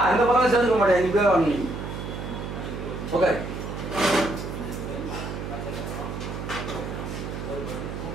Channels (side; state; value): right; noise; hum, 6 dB below the sound